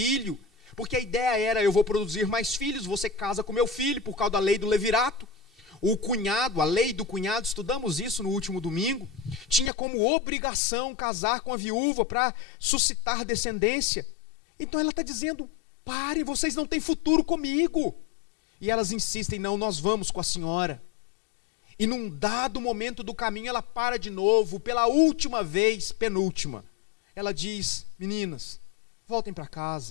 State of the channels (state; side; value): drops out; right; at 9.7 s